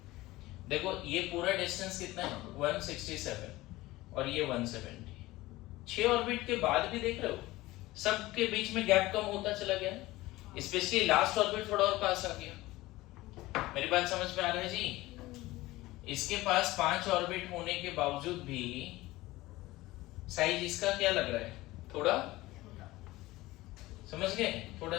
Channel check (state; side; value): quieter; right; 18.6 dB